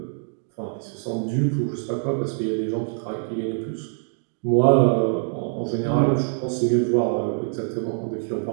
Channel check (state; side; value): silent; left; digital silence